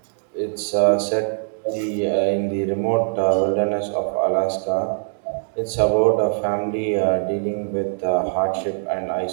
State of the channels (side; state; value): left; silent; digital silence